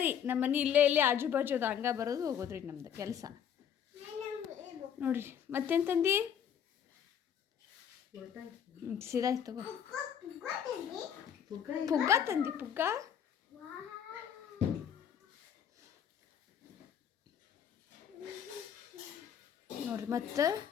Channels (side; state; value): right; quieter; 8.6 dB